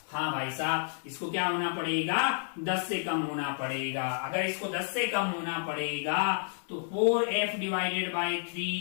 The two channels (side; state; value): right; silent; 57 dB below the other